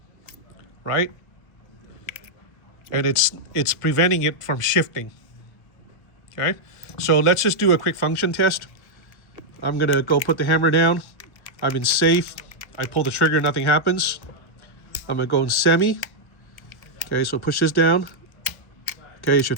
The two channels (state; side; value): late; right; 1.2 ms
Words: right? And it's preventing it from shifting, okay? So let's just do a quick function test. I'm gonna go put the hammer down. I'm in safe. I pull the trigger, nothing happens. I'm gonna go in semi. Okay, so push this down. Okay, it